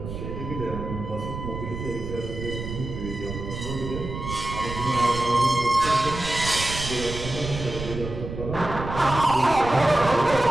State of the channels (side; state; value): right; noise; rumble, 8 dB below the sound